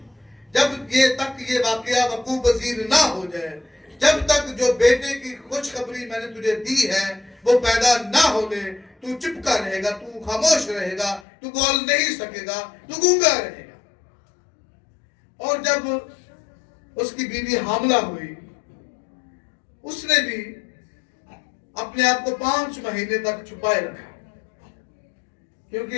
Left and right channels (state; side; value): drops out; right; at 11.2 s